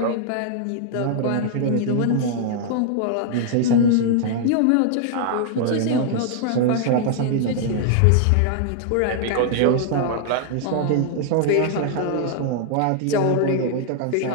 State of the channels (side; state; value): both; different; correlation -0.01